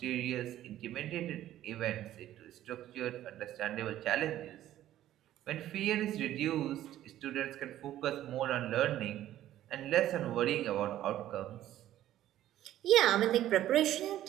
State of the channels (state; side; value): quieter; left; 13.0 dB